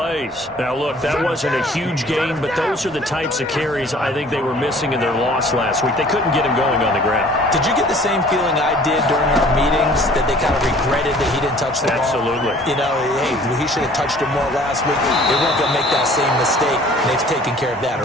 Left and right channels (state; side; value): normal; both; correlation 0.52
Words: Now, look, that wasn't a huge gain, but those are the types of carries I think they were missing in their loss last week. They couldn't get him going on the ground. Did you get the same feeling I did during our meetings, that they kind of regretted that he didn't touch the ball? Absolutely. You know, hey, he should have touched it more last week. They weren't going to make that same mistake, and they've taken care of that